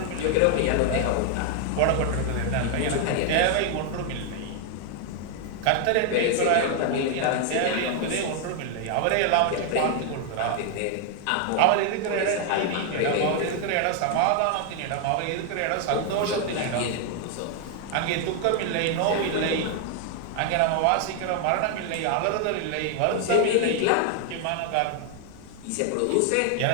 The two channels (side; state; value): both; different; correlation 0.00